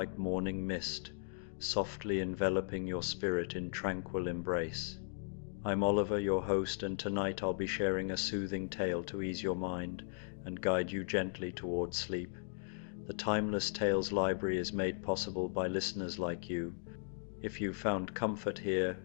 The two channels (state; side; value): silent; right; digital silence